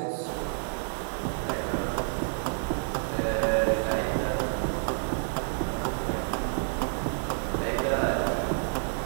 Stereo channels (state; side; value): silent; left; digital silence